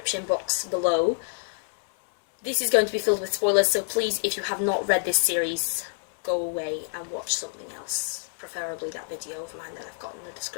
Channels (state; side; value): silent; right; 60 dB below the other